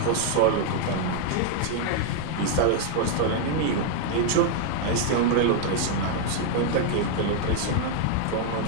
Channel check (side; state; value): both; different; correlation 0.00